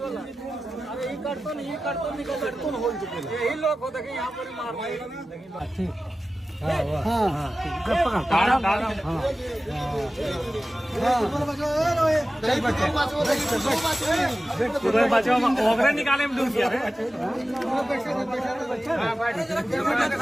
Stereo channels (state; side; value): normal; both; correlation 0.95